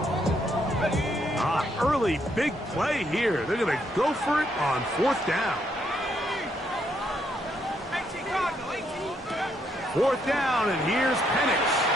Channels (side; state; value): both; normal; correlation 0.74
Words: Big play here. They're going to go for it on fourth down. Fourth down, and here's Penix.